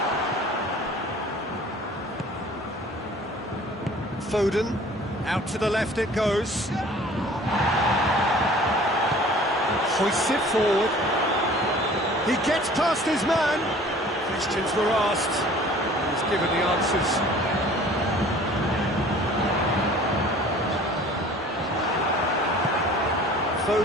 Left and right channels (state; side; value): normal; both; correlation 0.48